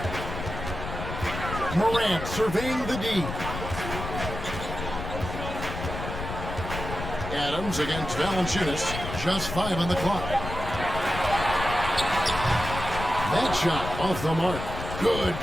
Morant surveying the D. Adams against Valanciunas. Just 5 on the clock. That shot off the mark. Good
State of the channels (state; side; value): noise; left; rumble, 7 dB below the sound